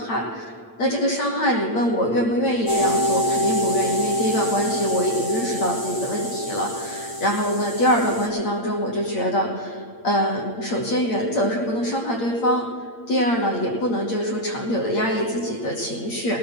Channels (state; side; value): late; right; 8.7 ms